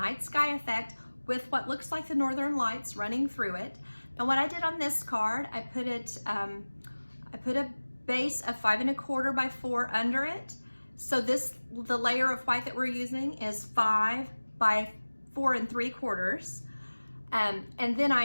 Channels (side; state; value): both; inverted; correlation -1.00